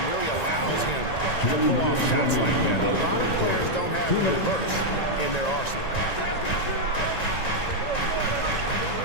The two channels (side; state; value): right; late; 1.9 ms